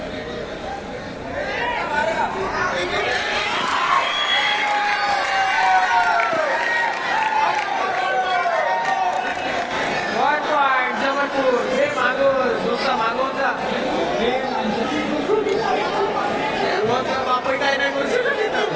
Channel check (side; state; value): both; identical; correlation 1.00